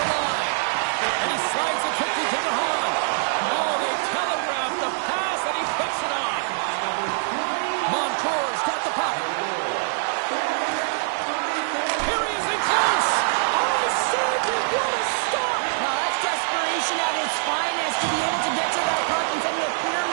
line. And he slides it quickly to the Hahn. Oh, they telegraph the pass, and he picks it off. Montour's got the puck. Here he is in close. Oh, Sergey, what a stop. Now, that's desperation at its finest to be able to get to that puck and send a clear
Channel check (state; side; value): silent; left; digital silence